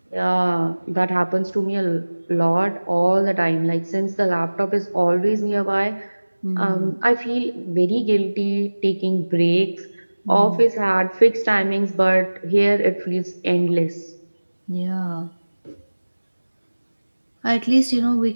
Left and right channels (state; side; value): inverted; both; correlation -1.00